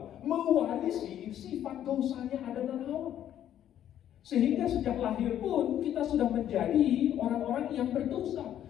mewarisi sifat dosanya Adam dan Hawa. Sehingga sejak lahir pun kita sudah menjadi orang-orang yang berdosa,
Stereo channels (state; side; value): quieter; right; 10.9 dB